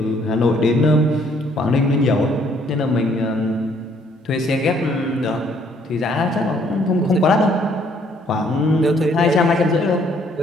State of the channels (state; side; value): normal; both; correlation 0.65